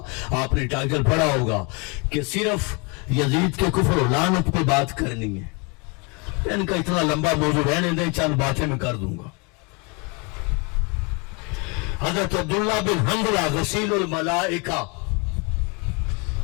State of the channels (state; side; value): quieter; right; 30.7 dB